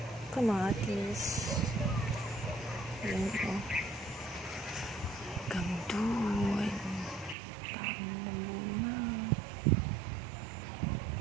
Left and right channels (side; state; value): left; drops out; at 7.4 s